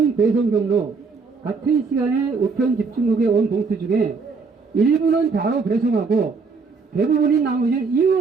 배송 경로, 같은 시간에 우편 집중국에 온 봉투 중에 일부는 바로 배송하고 대부분인 나머지는 이유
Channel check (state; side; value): quieter; left; 4.7 dB